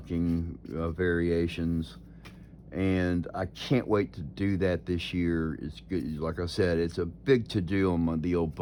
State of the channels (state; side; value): identical; both; correlation 1.00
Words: variations, and I can't wait to do that this year. It's good, like I said, it's a big to-do on the old